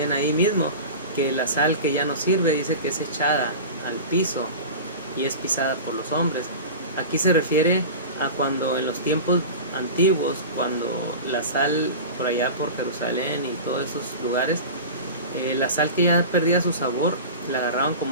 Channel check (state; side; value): inverted; both; correlation -0.31